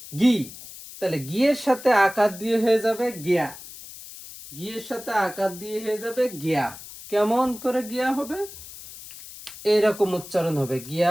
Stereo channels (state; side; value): noise; left; hiss, 15 dB below the sound